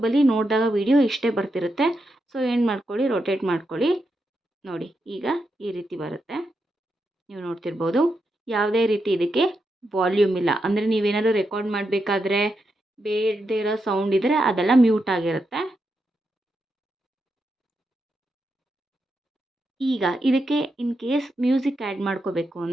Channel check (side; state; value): both; normal; correlation 0.85